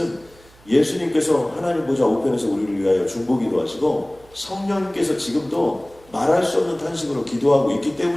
예수님께서 하나님 보좌 우편에서 우리를 위하여 중보기도 하시고 성령님께서 지금도 말할 수 없는 탄식으로 기도하고 있기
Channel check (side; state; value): right; noise; hum, 27 dB below the sound